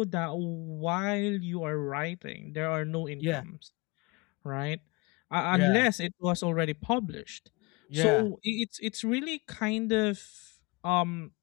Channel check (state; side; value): quieter; right; 27.0 dB